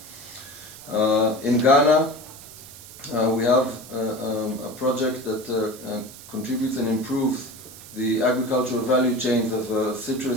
In Ghana, we have a project that contributes and improves the agricultural value chains of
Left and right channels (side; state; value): right; noise; hiss, 17 dB below the sound